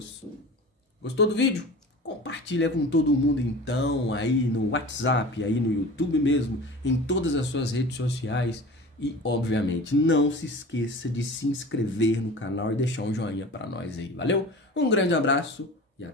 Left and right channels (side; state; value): both; normal; correlation 0.37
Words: Gostou do vídeo? Compartilha com todo mundo então, aí no WhatsApp, aí no YouTube mesmo, em todas as suas redes sociais. E, obviamente, não se esqueça de se inscrever no canal e deixar um joinha para nós aí, valeu? Um grande abraço e